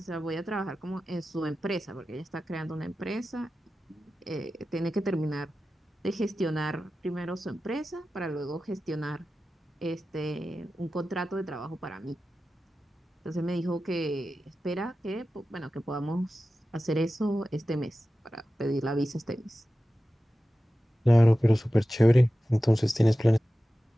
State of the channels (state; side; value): normal; both; correlation 0.94